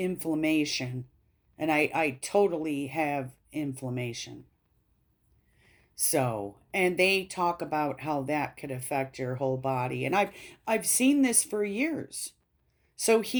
and I totally have inflammation. So, and they talk about how that could affect your whole body, and I've seen this for years. So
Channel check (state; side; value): identical; both; correlation 1.00